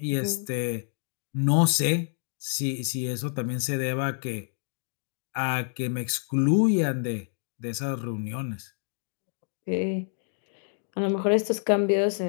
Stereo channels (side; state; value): right; silent; 59 dB below the other